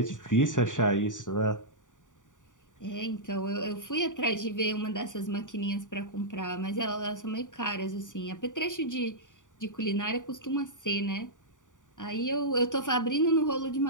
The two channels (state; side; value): late; right; 0.87 ms